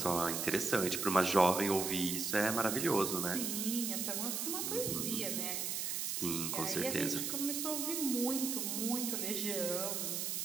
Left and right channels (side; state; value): right; noise; hiss, 1 dB below the sound